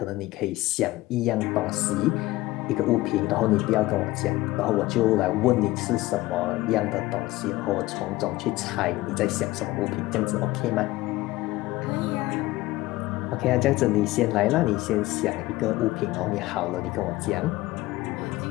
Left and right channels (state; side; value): quieter; right; 18.4 dB